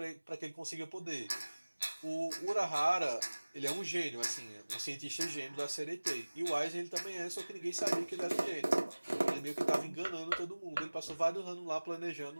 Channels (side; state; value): both; inverted; correlation -1.00